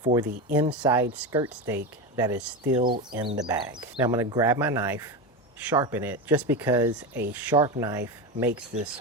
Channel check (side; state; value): both; normal; correlation 0.18